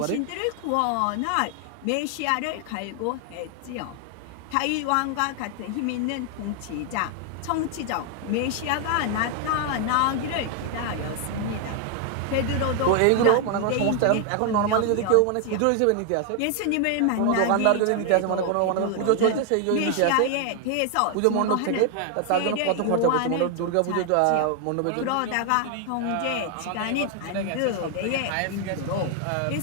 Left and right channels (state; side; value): different; both; correlation 0.00